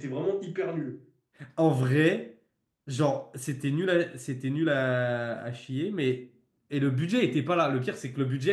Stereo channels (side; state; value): both; identical; correlation 1.00